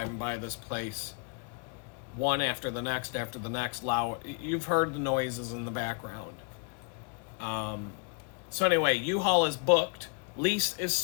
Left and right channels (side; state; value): right; quieter; 36.0 dB